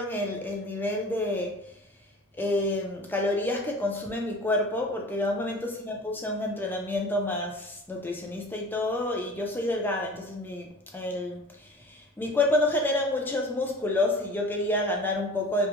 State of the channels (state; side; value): normal; both; correlation 0.41